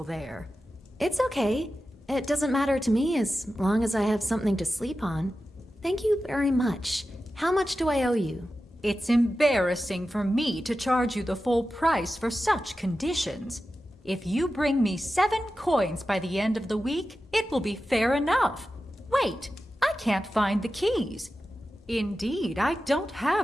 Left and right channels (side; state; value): both; normal; correlation 0.93